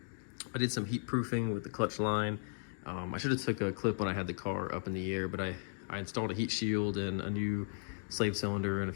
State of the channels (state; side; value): silent; right; digital silence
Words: I did some heat proofing with the clutch line. I should have took a clip when I had the car up in the air, but I installed a heat shield and a new slave cylinder and a